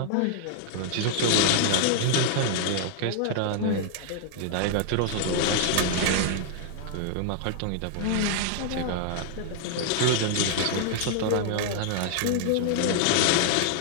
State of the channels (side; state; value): both; different; correlation -0.01